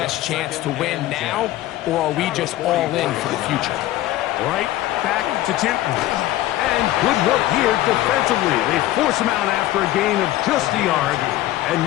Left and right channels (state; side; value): quieter; right; 15.2 dB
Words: chance to win now, or are we just all in for the future? Right back to Tipton. And good work here defensively. They force him out after a gain of just a yard. And